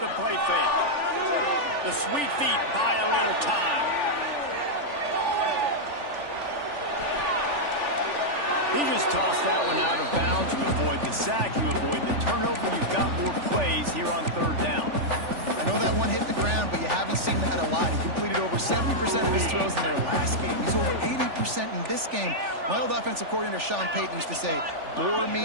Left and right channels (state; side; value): late; left; 3.4 ms